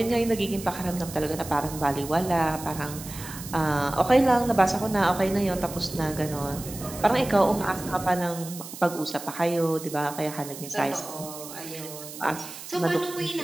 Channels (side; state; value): right; noise; hiss, 12 dB below the sound